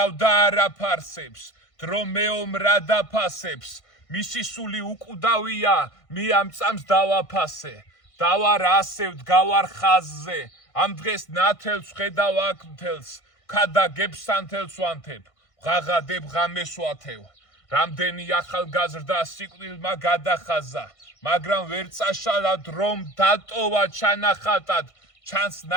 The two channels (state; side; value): late; right; 1.5 ms